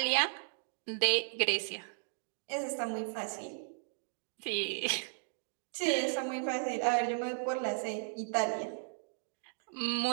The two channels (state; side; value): silent; left; digital silence